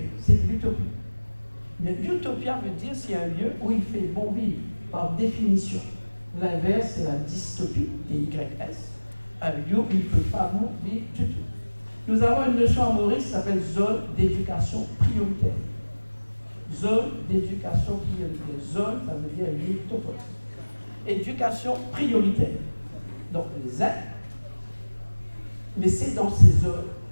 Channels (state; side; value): inverted; both; correlation -1.00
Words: c'est de l'utopie. Mais utopia veut dire c'est un lieu où il fait bon vivre, par définition. L'inverse, c'est la dystopie, D-Y-S, un lieu où il ne peut pas bon vivre du tout. Nous avons une notion à Maurice qui s'appelle zone d'éducation prioritaire. Zone d'éducation prioritaire. Zone, ça veut dire lieu topos. Éducation prioritaire. Donc les aides, mais c'est dans ces zones